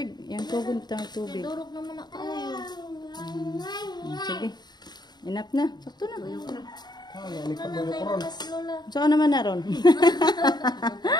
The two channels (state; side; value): late; right; 0.20 ms